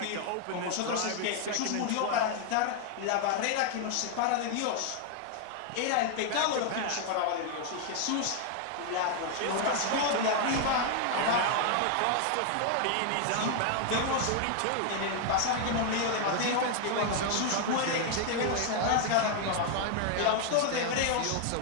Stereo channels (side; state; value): both; different; correlation 0.00